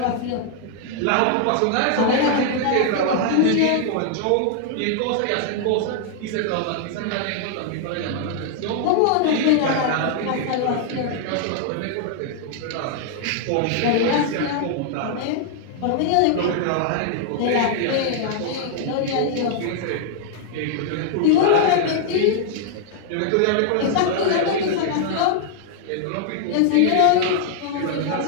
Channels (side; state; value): both; different; correlation 0.00